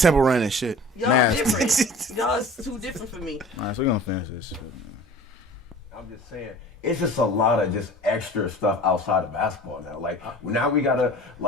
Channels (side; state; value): both; normal; correlation 0.42